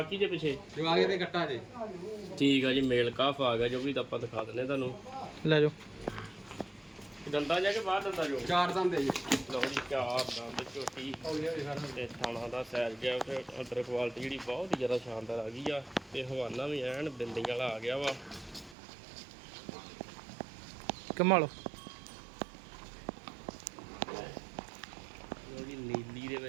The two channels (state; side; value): drops out; left; at 18.8 s